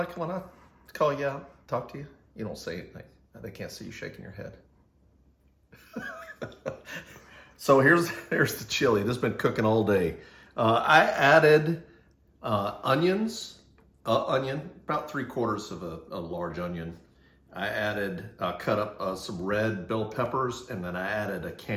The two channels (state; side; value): identical; both; correlation 1.00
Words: when I call you out, talk to you? You don't say anything. They can't see you shaking your head. So here's the chili. This has been cooking all day. I added onions, onion, about 3/4 of a large onion. I added, cut up some red bell peppers, and then I added a